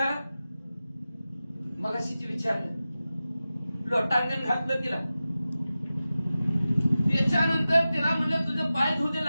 मग अशीच विचारलं, लोटांगण घातलं तिला. त्याच्यानंतर तिला म्हणलं तुझं पाय धुदे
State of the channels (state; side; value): inverted; both; correlation -0.94